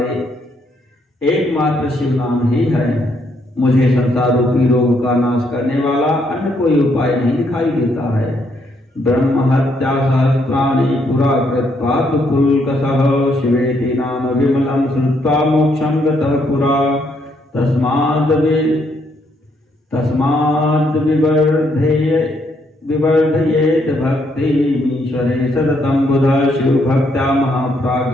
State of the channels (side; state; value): both; normal; correlation 0.73